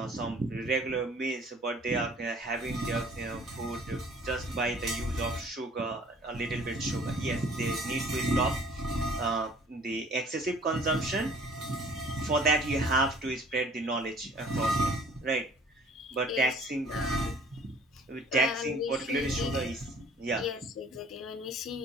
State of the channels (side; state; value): both; normal; correlation 0.53